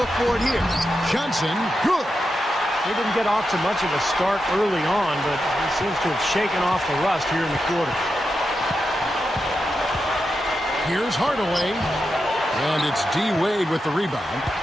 for it here. Johnson, good. He didn't get off to much of a start early on, but he seems to have shaken off the rust here in the quarter. Here's Hardaway. And it's D. Wade with the rebound.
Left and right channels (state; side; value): normal; both; correlation 0.88